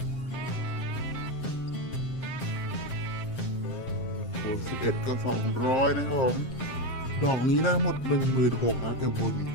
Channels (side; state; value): right; late; 7.6 ms